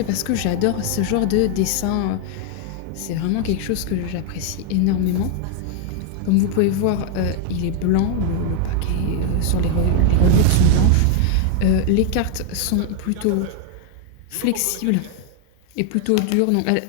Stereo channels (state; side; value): different; both; correlation 0.01